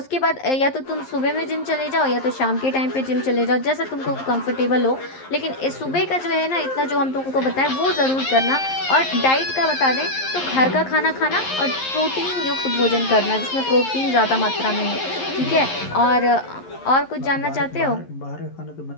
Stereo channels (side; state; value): right; late; 11 ms